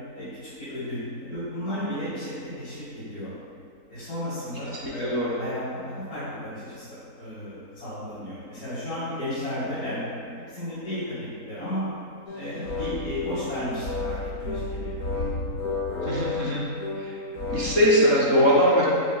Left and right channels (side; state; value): right; late; 3.9 ms